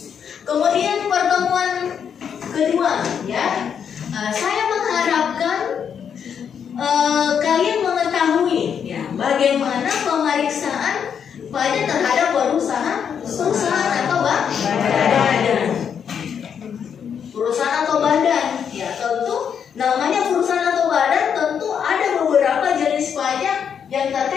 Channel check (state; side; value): quieter; right; 7.7 dB